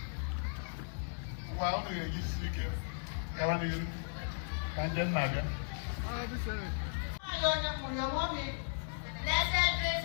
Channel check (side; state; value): right; silent; digital silence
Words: ngwa unu ga-eji siri ike gawa n'ihu ka nje nna bịa onye mụrụ onwe mi Blessed